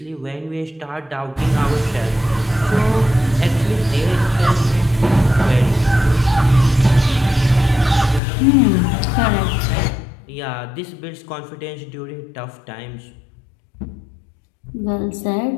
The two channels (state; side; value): drops out; right; at 8.2 s